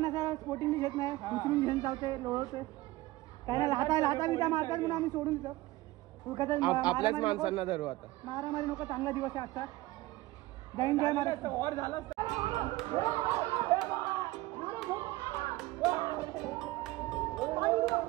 असा स्पोर्टिंग घेत नाही उचलून घेऊन चालते लोळते त्याला लाता बिता मारतात म्हणून आम्ही सोडून आपल्याच माणसांना धरू आता. मारामारी नको चांगला दिवस आहे आजचा जैन जय महाराज.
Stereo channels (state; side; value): quieter; left; 18.7 dB